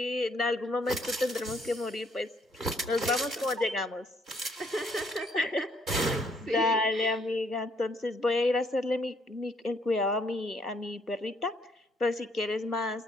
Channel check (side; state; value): both; normal; correlation 0.68